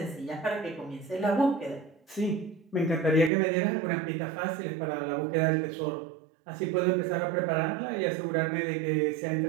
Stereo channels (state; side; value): drops out; left; at 3.3 s